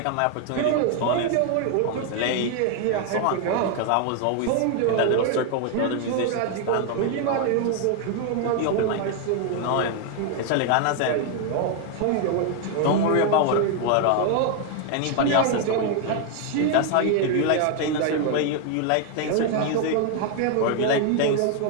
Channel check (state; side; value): different; both; correlation 0.00